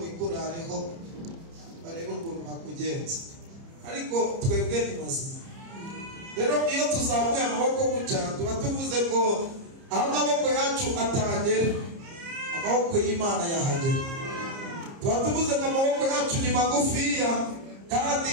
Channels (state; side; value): late; left; 30 ms